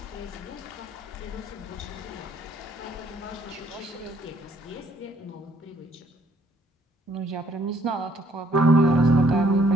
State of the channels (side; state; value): both; normal; correlation 0.65